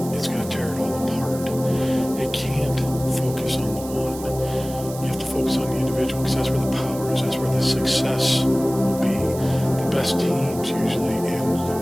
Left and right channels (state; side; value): noise; right; hiss, 15 dB below the sound